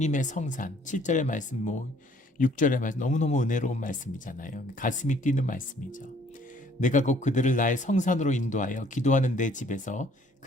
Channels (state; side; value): normal; both; correlation 0.60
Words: 성산 7절의 말씀 6절의 말씀 너무너무 은혜로운 말씀이잖아요. 가슴이 뛰는 말씀이죠. 내가 곧 그들을 나의 성산으로 인도하여 기도하는 내 집에서